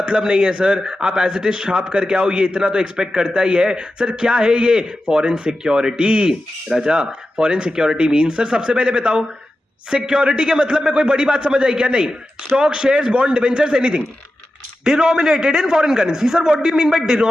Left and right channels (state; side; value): normal; both; correlation 0.92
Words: नहीं है सर, आप एज इट इज छाप करके आओ, ये इतना तो एक्सपेक्ट करता ही है। सर क्या है ये, फॉरेन सिक्योरिटी। राजा फॉरेन सिक्योरिटी मीन, सर सबसे पहले बताओ सिक्योरिटी के मतलब में कोई बड़ी बात समझ आई क्या, नहीं, stock, shares, bond, debentures, anything denominated in foreign currency. Sir what do you mean by